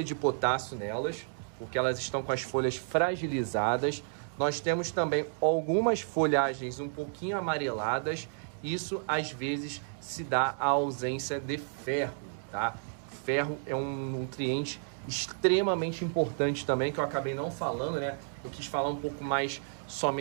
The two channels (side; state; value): left; silent; digital silence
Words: de potássio nelas, porque elas estão com as folhas fragilizadas, nós temos também algumas folhagens um pouquinho amareladas. Isso às vezes se dá à ausência de ferro, tá? Ferro é um nutriente extremamente importante também, que eu acabei não falando, né? Eu quis falar um pouco mais